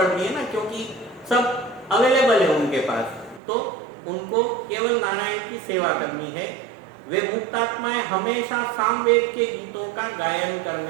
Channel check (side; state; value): left; drops out; at 3.4 s